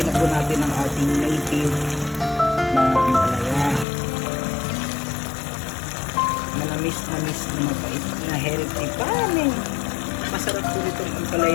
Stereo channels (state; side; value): drops out; right; at 3.9 s